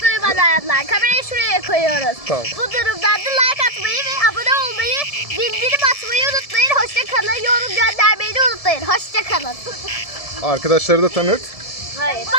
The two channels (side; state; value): right; late; 1.7 ms